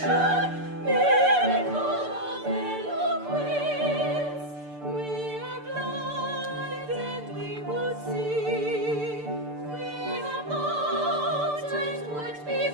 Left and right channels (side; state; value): left; late; 6.8 ms